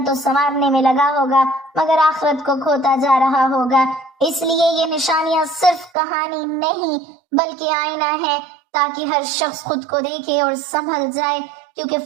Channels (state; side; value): drops out; left; at 5.9 s